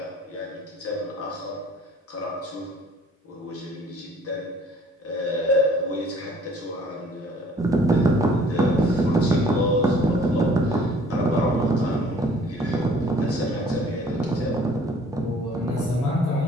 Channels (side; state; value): both; normal; correlation 0.55